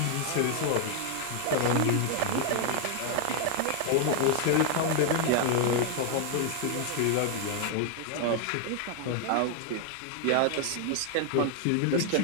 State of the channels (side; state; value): both; different; correlation 0.00